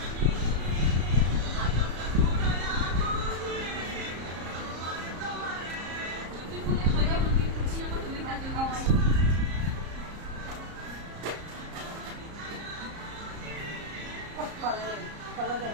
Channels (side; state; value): left; late; 34 ms